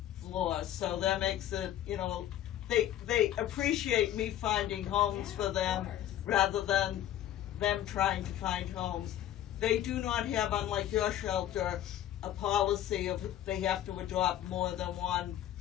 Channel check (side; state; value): right; quieter; 12.1 dB